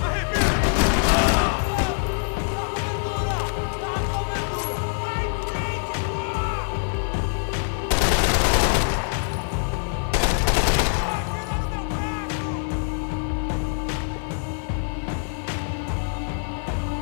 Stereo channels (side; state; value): right; silent; digital silence